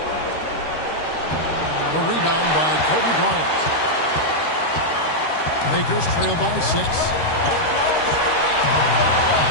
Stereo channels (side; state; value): right; late; 13 ms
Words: The rebound by Kobe Bryant. Lakers trail by 6.